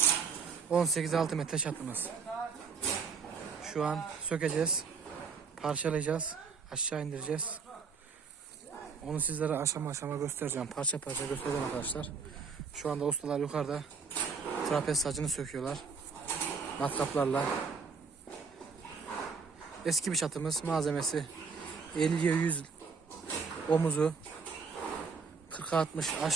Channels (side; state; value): left; quieter; 5.4 dB